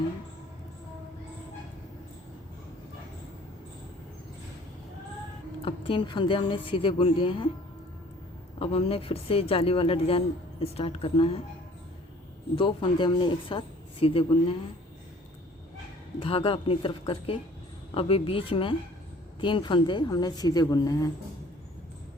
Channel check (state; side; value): normal; both; correlation 0.53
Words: हैं। अब 3 फंदे हमने सीधे बुन लिए हैं। अब हमने फिर से जाली वाला डिज़ाइन स्टार्ट करना है। 2 फंदे हमने एक साथ सीधे बुनने हैं, धागा अपनी तरफ करके। अभी बीच में 3 फंदे हमने सीधे बुनने हैं।